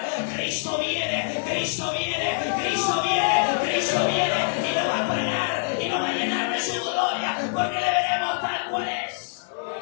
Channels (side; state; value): right; silent; digital silence